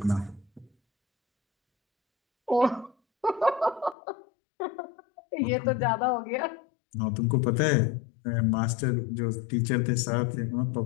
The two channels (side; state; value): right; drops out; at 4.0 s